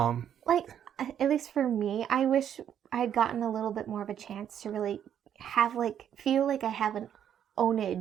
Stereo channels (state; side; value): quieter; left; 9.4 dB